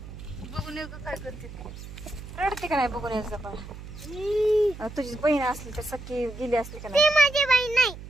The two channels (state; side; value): noise; right; hum, 13 dB below the sound